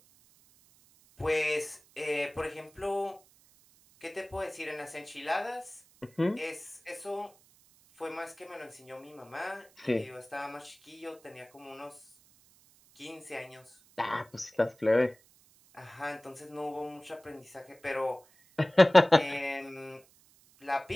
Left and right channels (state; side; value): noise; right; hiss, 28 dB below the sound